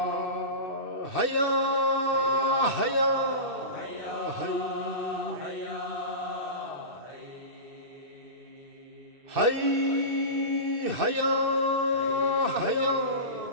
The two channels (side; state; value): left; late; 2.6 ms